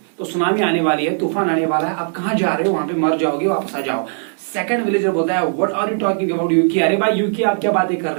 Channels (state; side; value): silent; left; 67 dB below the other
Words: तो सुनामी आने वाली है, तूफान आने वाला है. आप कहाँ जा रहे हो? वहां पे मर जाओगे, वापस आ जाओ. सेकंड विलेजर बोलता है what are you talking about Yuki. अरे भाई यूकी आप क्या बातें कर